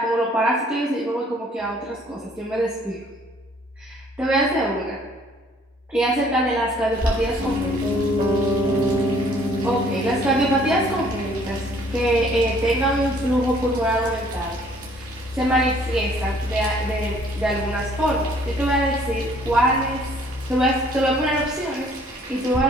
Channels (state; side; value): normal; both; correlation 0.59